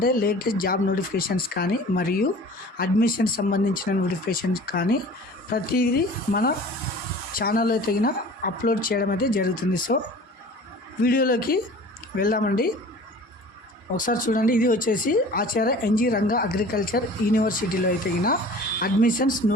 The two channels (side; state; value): both; normal; correlation 0.44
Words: లేటెస్ట్ జాబ్ నోటిఫికేషన్స్ కానీ మరియు అడ్మిషన్ సంబంధించిన నోటిఫికేషన్స్ కానీ ప్రతిదీ మన ఛానల్లో తగిన అప్లోడ్ చేయడం అయితే జరుగుతుంది. సో వీడియోలోకి వెళ్దామండి. ఒకసారి చూడండి, ఇది వచ్చేసి ఆచార్య ఎన్జీ రంగా అగ్రికల్చర్ యూనివర్సిటీలో తగిన అడ్మిషన్స్